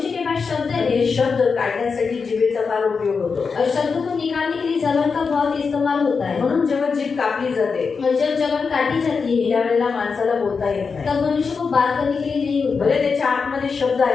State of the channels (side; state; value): right; quieter; 5.2 dB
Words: के पास शब्द है. हे शब्द काढण्यासाठी जिभेचा फार उपयोग होतो. और शब्दों को निकालने के लिए जबान का बहुत इस्तेमाल होता है. म्हणून जेव्हा जीभ कापली जाते और जब जबान काटी जाती है त्यावेळेला माणसाला बोलता येत नाही. तब मनुष्य को बात करने के लिए नहीं होता. भले त्याच्या आतमध्ये शब्द